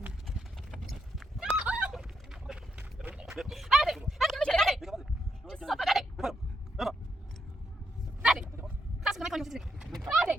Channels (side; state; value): both; normal; correlation 0.80